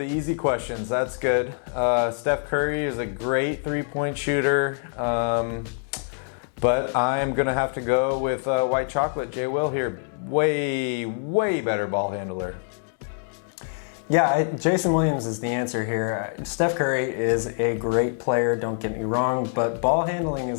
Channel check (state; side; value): silent; right; digital silence